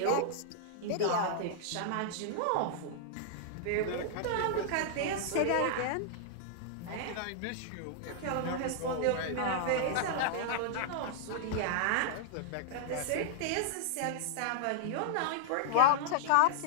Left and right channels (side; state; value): both; different; correlation -0.01